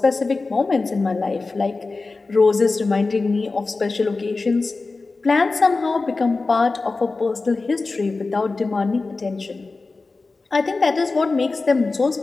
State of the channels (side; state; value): right; quieter; 3.7 dB